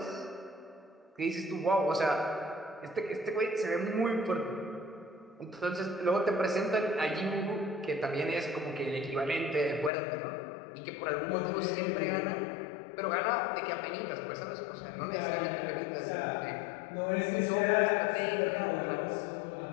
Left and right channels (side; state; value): right; drops out; at 9.9 s